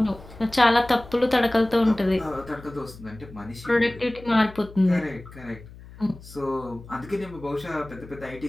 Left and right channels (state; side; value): noise; left; hum, 18 dB below the sound